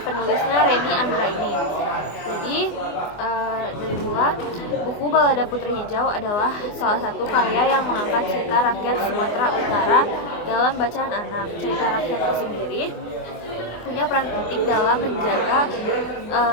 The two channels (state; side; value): late; right; 24 ms